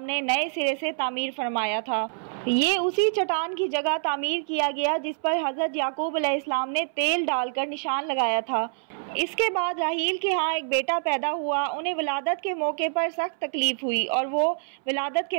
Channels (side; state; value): left; silent; 61 dB below the other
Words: ने नए सिरे से तामीर फरमाया था। ये उसी चट्टान की जगह तामीर किया गया जिस पर हज़रत याकूब अलैहिस्सलाम ने तेल डालकर निशान लगाया था। इसके बाद राहील के यहाँ एक बेटा पैदा हुआ। उन्हें विलादत के मौके पर सख्त तकलीफ़ हुई और वो विलादत